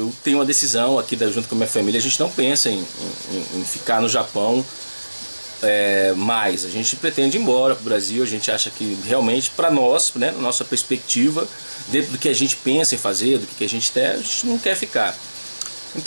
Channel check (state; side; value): inverted; both; correlation -1.00